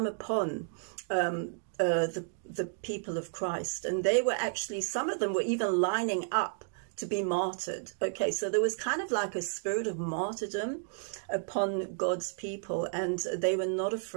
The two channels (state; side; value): silent; left; digital silence